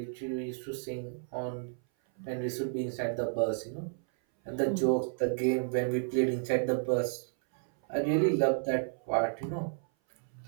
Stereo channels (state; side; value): silent; left; 56 dB below the other